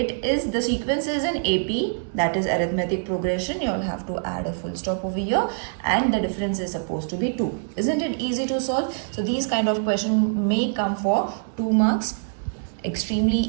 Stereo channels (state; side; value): silent; left; digital silence